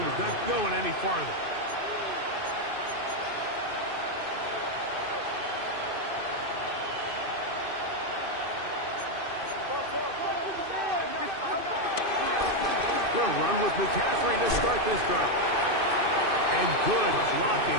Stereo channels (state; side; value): late; left; 2.6 ms